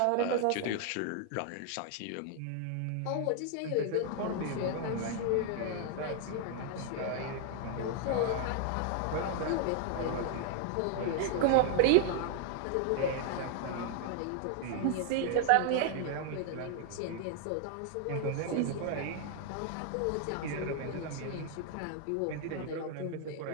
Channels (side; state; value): both; different; correlation 0.00